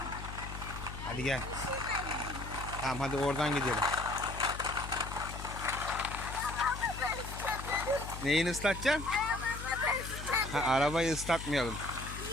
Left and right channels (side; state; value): left; noise; hum, 9 dB below the sound